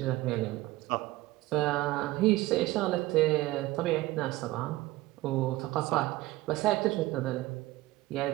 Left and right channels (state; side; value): quieter; left; 18.4 dB